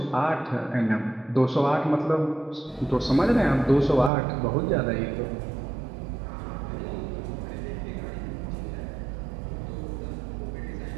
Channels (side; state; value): left; drops out; at 4.1 s